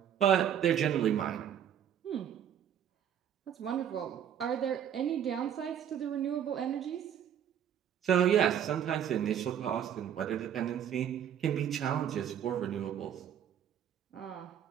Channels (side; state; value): left; quieter; 9.4 dB